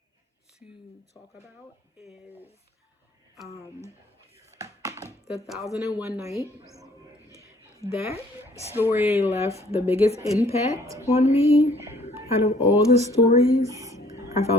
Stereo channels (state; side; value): normal; both; correlation 0.59